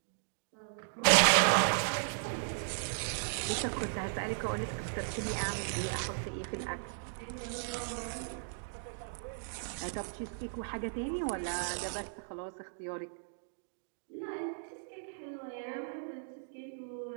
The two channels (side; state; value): left; silent; digital silence